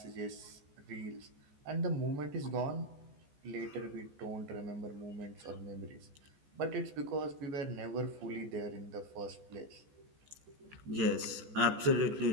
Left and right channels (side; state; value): left; late; 14 ms